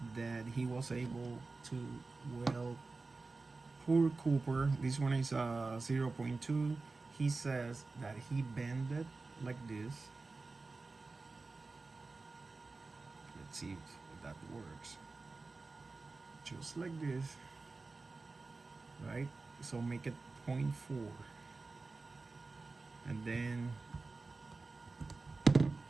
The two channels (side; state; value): left; quieter; 3.7 dB